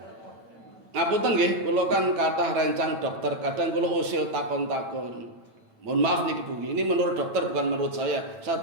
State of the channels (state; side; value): late; left; 8.9 ms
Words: Ngapunten nggih, kula kan kathah rencang dokter, kadang kula usil takon-takon. Mohon maaf nih Bu, ini menurut dokter bukan menurut saya